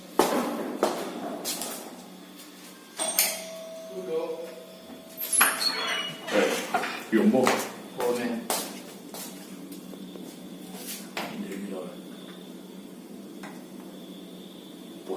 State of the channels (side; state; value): both; identical; correlation 1.00